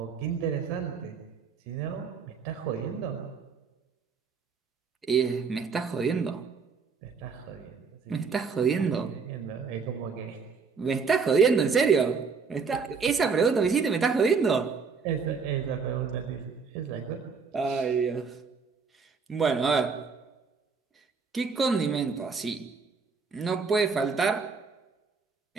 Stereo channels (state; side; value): quieter; left; 5.3 dB